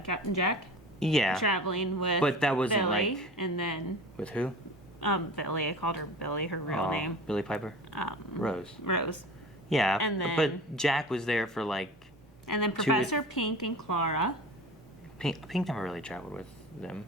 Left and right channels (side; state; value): both; normal; correlation 0.36